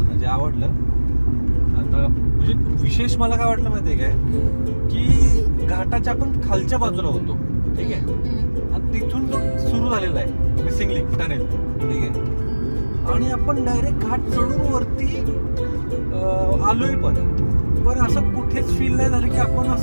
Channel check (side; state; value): both; inverted; correlation -1.00